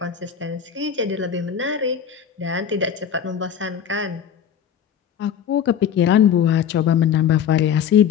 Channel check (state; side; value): quieter; right; 8.4 dB